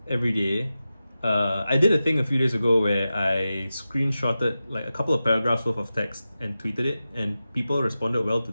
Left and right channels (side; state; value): both; inverted; correlation -0.93